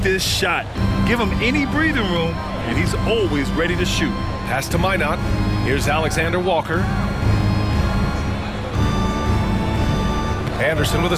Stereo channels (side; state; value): both; identical; correlation 1.00